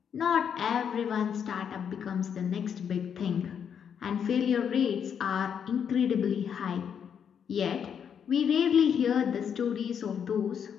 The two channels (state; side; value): quieter; right; 7.8 dB